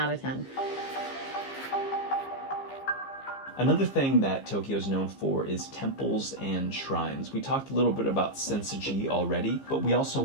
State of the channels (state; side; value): late; right; 15 ms